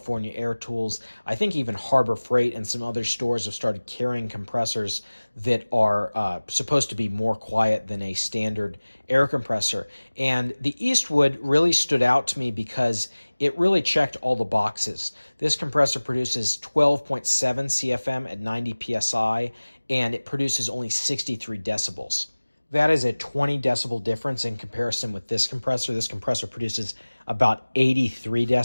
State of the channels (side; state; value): both; inverted; correlation -1.00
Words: Air Tools. I think even Harbor Freight and some other stores have started carrying compressors that are supposed to be more quiet than a standard air compressor. And the Eastwood really stood out to me because it really checked all the boxes. This compressor produces 12.7 CFM at 90 PSI, and it produces only 63 decibels. That is a 20 decibel difference in comparison with this compressor. This compressor produces about 83